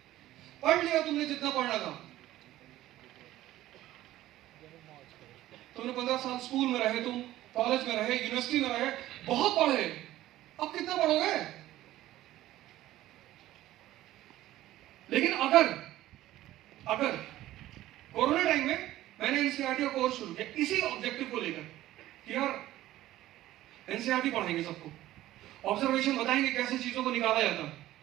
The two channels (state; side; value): quieter; left; 14.9 dB